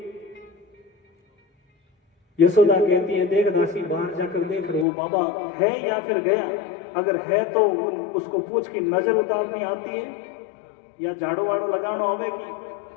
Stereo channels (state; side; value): drops out; right; at 4.9 s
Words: यशोदा कहती है देख दासी बाहर जाकर देख वो बाबा है या फिर गया, अगर है तो उसको पूछ की नजर उतारनी आती है या झाड़ू वाड़ू लगाना आवेगी।